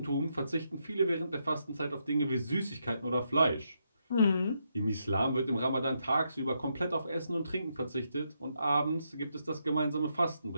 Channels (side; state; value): both; inverted; correlation -0.80